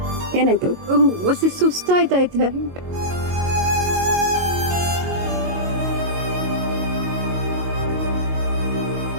ಏನಾಯ್ತು? ಹೊಸಿ ಸುಸ್ತಾಯ್ತೈತೆ.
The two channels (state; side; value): late; left; 22 ms